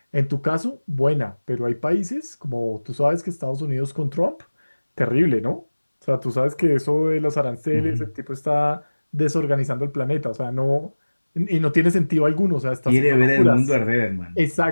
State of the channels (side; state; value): both; inverted; correlation -1.00